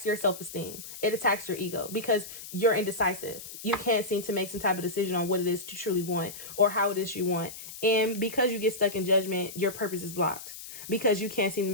your self-esteem. It attacks your ego because you're indecisive. You can't seem to make some type of decision on what it is you truly want or how it is you want. And because you get stuck in judgment, your purpose is blocked. Because you can't seem to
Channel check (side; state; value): left; noise; hiss, 12 dB below the sound